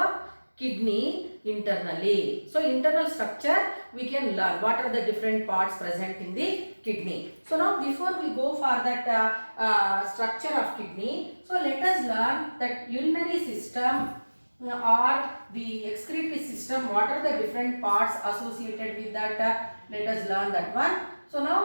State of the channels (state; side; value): inverted; both; correlation -1.00